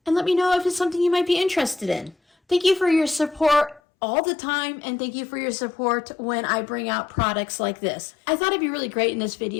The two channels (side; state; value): right; drops out; at 3.8 s